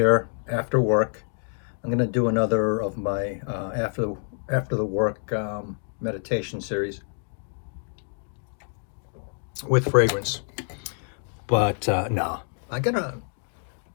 After work, I'm gonna do another of my after the work meditation series with fragrance. But no, I got a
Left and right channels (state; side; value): silent; right; 59 dB below the other